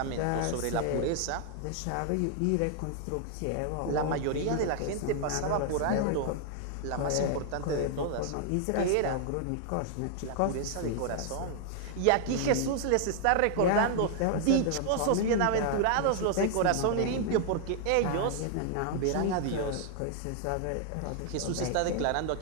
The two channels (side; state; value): both; different; correlation 0.00